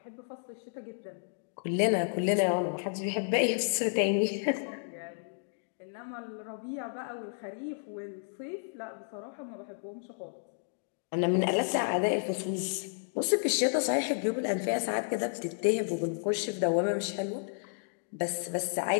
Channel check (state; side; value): silent; right; digital silence